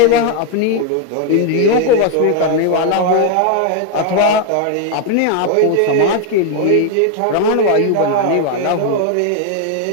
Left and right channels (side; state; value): both; different; correlation 0.00